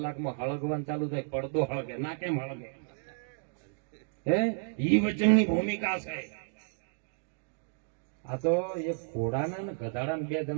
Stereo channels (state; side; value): silent; left; digital silence